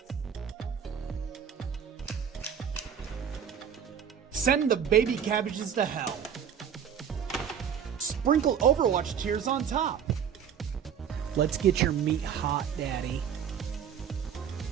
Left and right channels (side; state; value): left; quieter; 8.2 dB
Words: Send the baby cabbages to hell. Sprinkle Overwatch tears on top. Let's get your meat hot, Daddy.